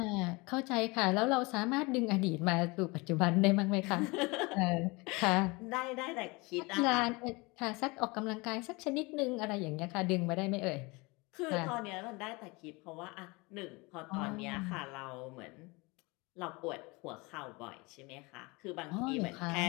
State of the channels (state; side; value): quieter; right; 25.7 dB